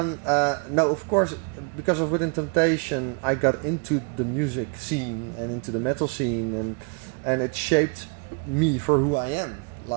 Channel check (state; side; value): quieter; left; 36.9 dB